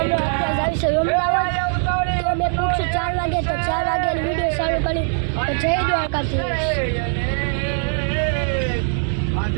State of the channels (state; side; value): silent; left; 65 dB below the other